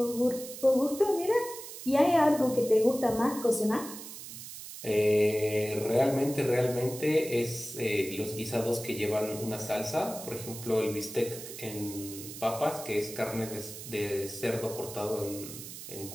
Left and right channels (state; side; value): noise; right; hiss, 12 dB below the sound